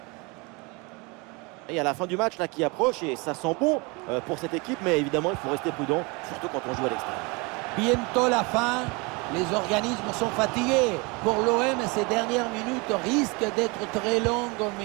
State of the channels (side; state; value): left; quieter; 28.1 dB